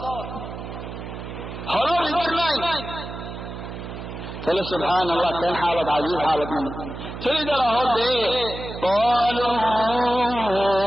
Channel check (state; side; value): noise; right; hum, 9 dB below the sound